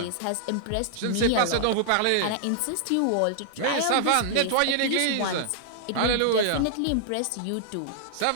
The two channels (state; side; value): different; both; correlation -0.01